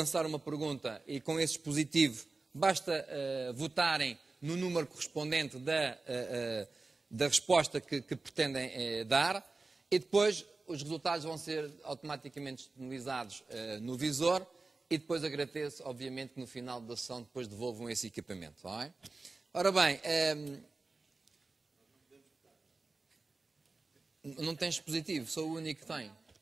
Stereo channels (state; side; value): quieter; left; 3.6 dB